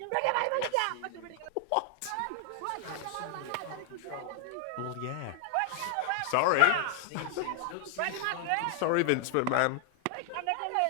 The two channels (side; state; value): both; different; correlation 0.00